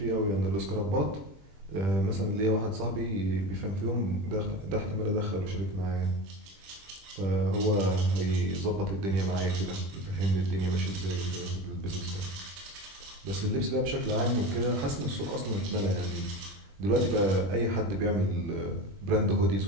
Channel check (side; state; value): left; late; 21 ms